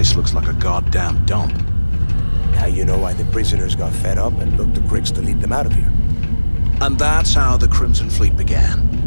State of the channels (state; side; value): inverted; both; correlation -1.00